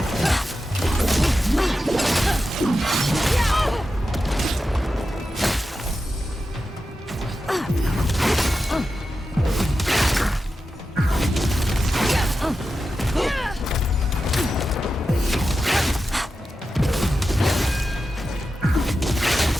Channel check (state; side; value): normal; both; correlation 0.91